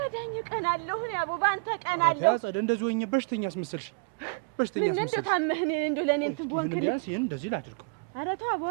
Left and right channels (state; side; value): quieter; left; 34.9 dB